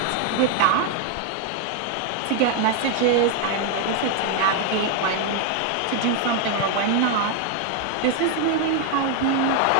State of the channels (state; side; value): different; both; correlation 0.01